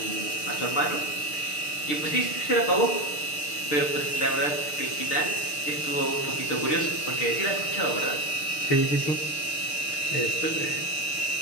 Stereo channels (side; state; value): right; late; 6.7 ms